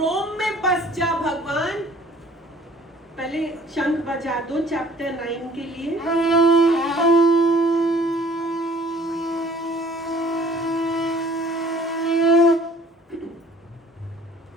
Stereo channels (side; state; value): both; normal; correlation 0.54